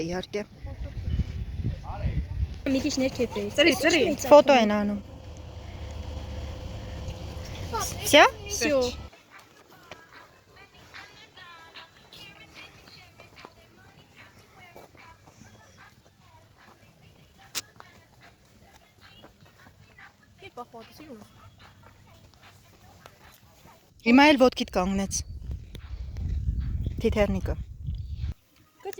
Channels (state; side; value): identical; both; correlation 1.00